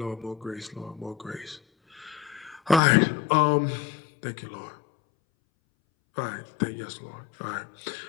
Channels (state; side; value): drops out; right; at 2.8 s